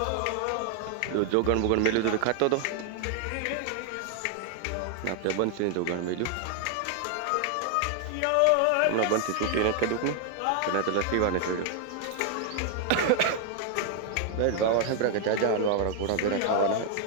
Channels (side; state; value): both; different; correlation 0.00